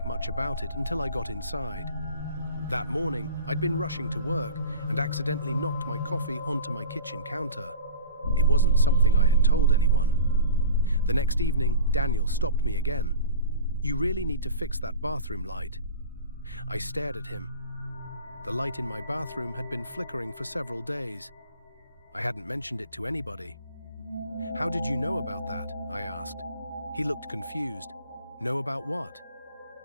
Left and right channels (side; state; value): both; inverted; correlation -0.39